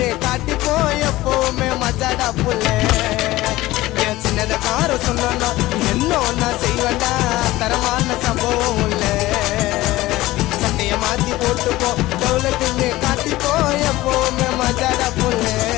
காட்டிப்போ எப்பவுமே மஜாடா புள்ள. என் சின்னத கார சொன்னா என்ன நான் செய்வேண்டா தரமான சம்பவம் இல்ல. சட்டைய மாத்தி போட்டுப்போ டவுலுக்குன்னு காட்டிப்போ எப்பவுமே மஜாடா புள்ள.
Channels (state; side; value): quieter; right; 17.7 dB